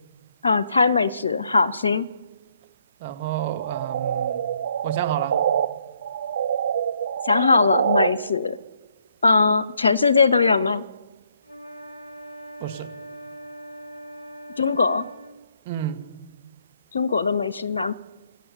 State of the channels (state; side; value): inverted; both; correlation -0.72